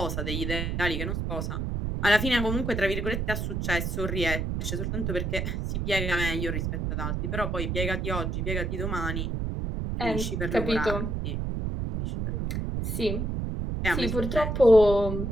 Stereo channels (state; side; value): noise; right; rumble, 1 dB below the sound